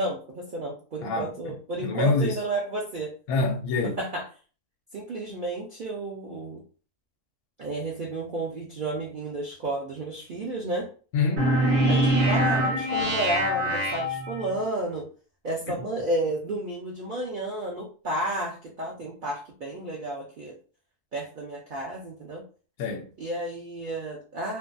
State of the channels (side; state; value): both; normal; correlation 0.19